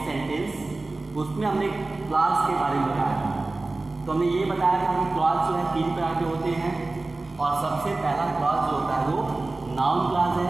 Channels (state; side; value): quieter; left; 3.2 dB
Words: सेंटेंस, उसमें हमने क्लास के बारे में बताया था। तो हमने ये बताया था कि क्लास जो है 3 प्रकार के होते हैं और सबसे पहला क्लास जो होता है वो नाउन क्लास